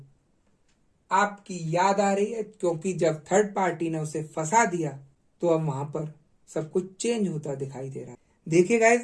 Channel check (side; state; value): both; identical; correlation 1.00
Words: आपकी याद आ रही है, क्योंकि जब थर्ड पार्टी ने उसे फंसा दिया तो अब वहां पर सब कुछ चेंज होता दिखाई दे रहा है। देखिए गाइस,